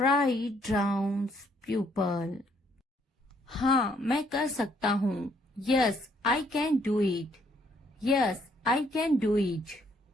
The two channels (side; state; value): both; normal; correlation 0.68